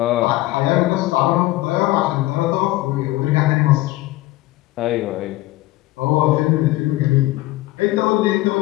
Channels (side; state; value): right; quieter; 18.0 dB